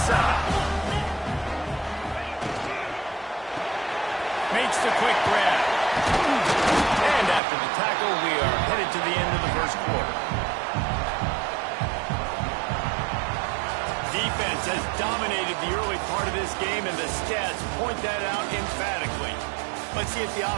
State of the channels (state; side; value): drops out; left; at 7.4 s